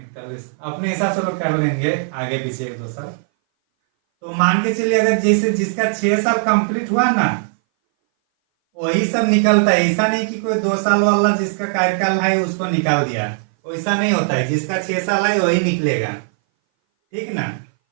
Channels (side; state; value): left; silent; 60 dB below the other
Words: अपने हिसाब से लोग कर लेंगे, आगे पीछे 1-2 साल। तो मान के चलिए अगर जैसे जिसका 6 साल कंप्लीट हुआ ना वही सब निकलता है। ऐसा नहीं कि कोई 2 साल वाला जिसका कार्यकाल है उसको निकाल दिया, वैसा नहीं होता है। जिसका 6 साल है वही निकलेगा, ठीक ना।